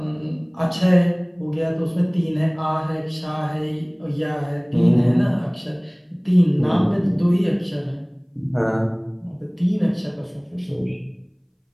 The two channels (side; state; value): both; identical; correlation 1.00